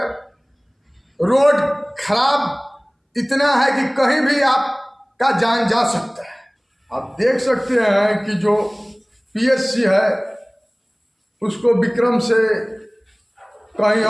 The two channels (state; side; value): identical; both; correlation 1.00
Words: रोड खराब इतना है कि कहीं भी आपका जान जा सकता है। आप देख सकते हैं कि जो PSC है उसको विक्रम से कहीं